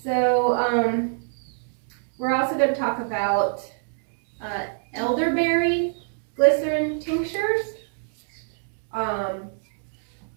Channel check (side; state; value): left; silent; 62 dB below the other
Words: so we're also going to talk about elderberry glycerin tinctures.